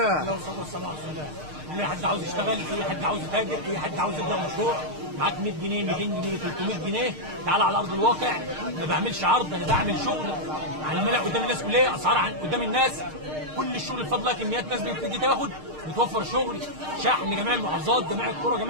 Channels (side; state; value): left; late; 6.5 ms